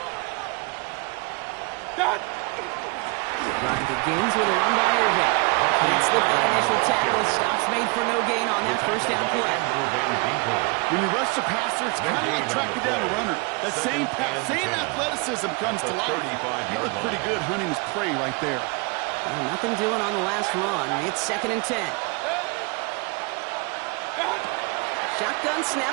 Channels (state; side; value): quieter; left; 29.4 dB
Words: Done. Drive begins with a run by Irving. Can't slip that initial tackle. Stops made for no gain on that first down play. When you rush the passer, it's kind of like tracking down a runner. That same pass, same athleticism comes to life. He looked pretty good hunting his prey right there. Well, nothing doing on the last run. It's 2nd and 10. Shotgun